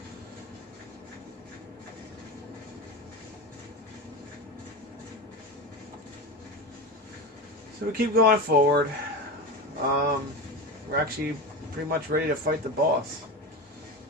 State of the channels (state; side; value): normal; both; correlation 0.23